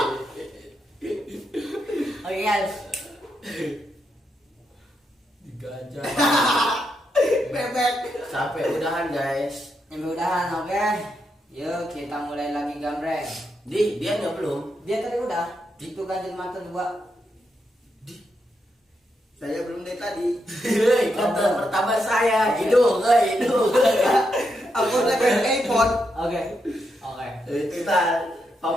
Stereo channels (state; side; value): normal; both; correlation 0.82